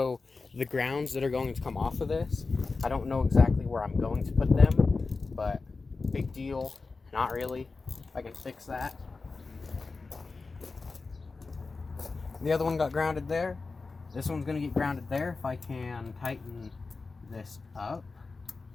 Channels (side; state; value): right; quieter; 4.1 dB